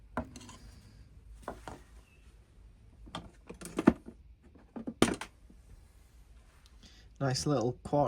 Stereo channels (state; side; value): identical; both; correlation 1.00